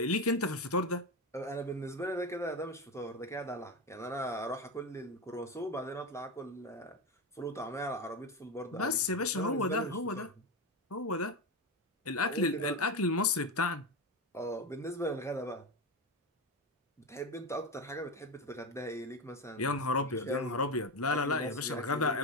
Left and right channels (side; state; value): both; normal; correlation 0.17